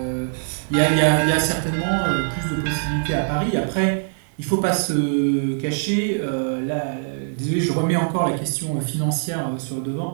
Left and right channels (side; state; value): left; silent; 64 dB below the other